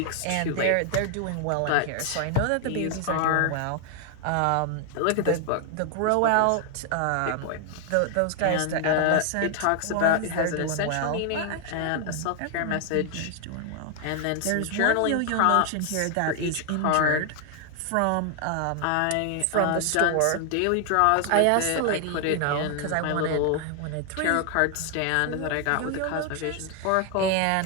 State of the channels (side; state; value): both; different; correlation 0.00